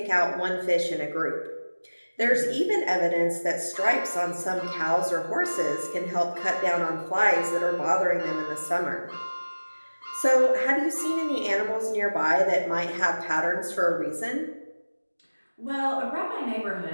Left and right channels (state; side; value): inverted; both; correlation -1.00